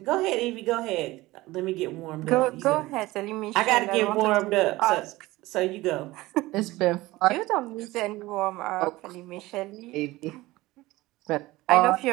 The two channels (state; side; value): quieter; left; 19.0 dB